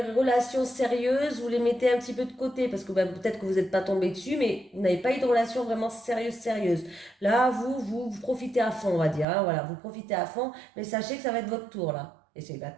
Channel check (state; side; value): drops out; left; at 9.2 s